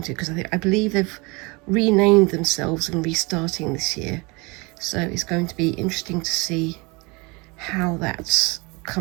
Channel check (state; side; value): quieter; left; 26.8 dB